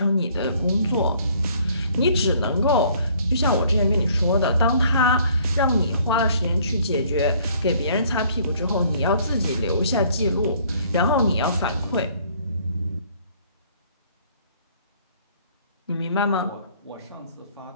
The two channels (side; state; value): both; inverted; correlation -0.60